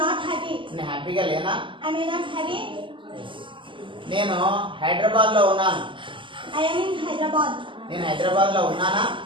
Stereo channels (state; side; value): late; left; 0.25 ms